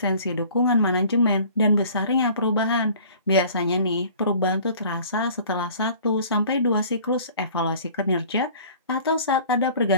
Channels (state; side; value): inverted; both; correlation -0.49